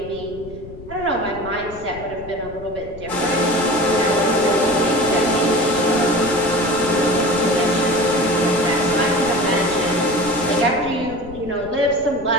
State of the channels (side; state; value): left; noise; rumble, 16 dB below the sound